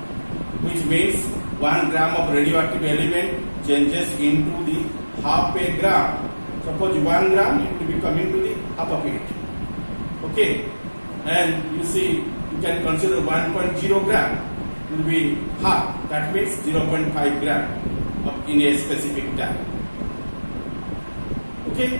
which means 1 gram of radioactive element changes into the half a gram. Suppose 1 gram, it will be coming to the half of it. Okay, and you see, you can consider 1.0 gram will be half. That means 0.5 gram in a specific time. Okay,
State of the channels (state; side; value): inverted; both; correlation -1.00